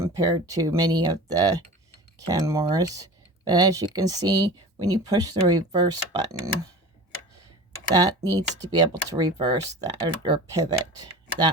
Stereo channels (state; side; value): normal; both; correlation 0.36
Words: to many of the Kenmores. But as you can see, when you push the reverse button, that needs to be able to reverse that or pivot